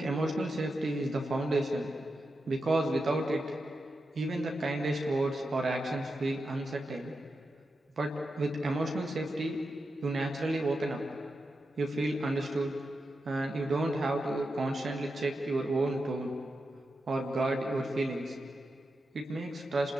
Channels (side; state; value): both; normal; correlation 0.88